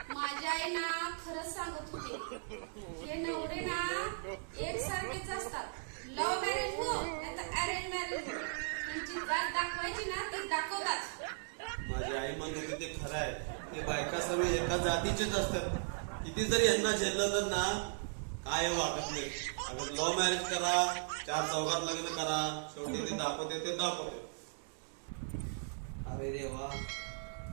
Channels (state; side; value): silent; left; 53 dB below the other